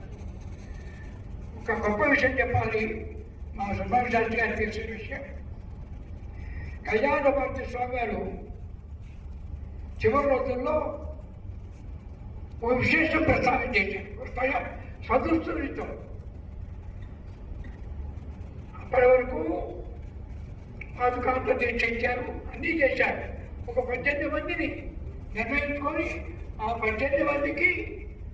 ఒక గొప్ప విషయం చెప్పాలి. మా సుబ్రహ్మణ్య శాస్త్రి గారు తెలిసిన విషయం. కళ్యాణభారతి స్వామి గారు చివరి రోజుల్లో ఓ విశేషం ప్రస్తావన చేశారు. స్వదృష్టితో అప్పటి వరకు పాదుకాంత దీక్ష ఇచ్చారు, అన్నీ చేశారు. ఒక 18 మందిని నిర్ణయించుకొని ఆ 18 మందికి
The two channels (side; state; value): both; identical; correlation 1.00